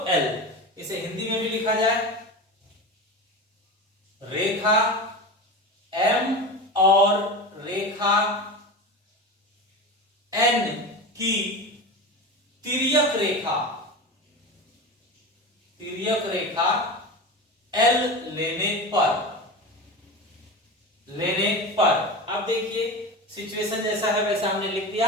L। इसे हिंदी में भी लिखा जाए, रेखा M और रेखा N की तिर्यक रेखा L लेने पर अब देखिए, सिचुएशन जैसा है वैसा हमने लिख दिया।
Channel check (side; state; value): both; normal; correlation 0.26